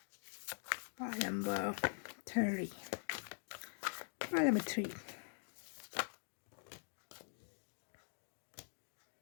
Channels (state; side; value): silent; right; digital silence